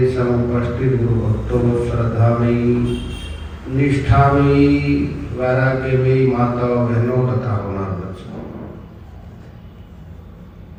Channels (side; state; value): both; identical; correlation 1.00